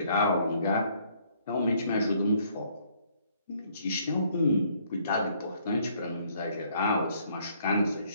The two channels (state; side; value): inverted; both; correlation -0.65